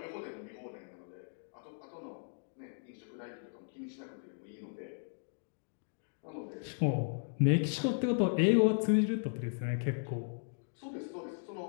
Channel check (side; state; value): right; silent; digital silence